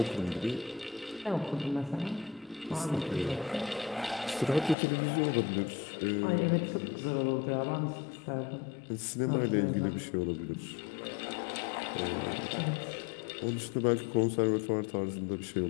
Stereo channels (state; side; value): drops out; right; at 4.8 s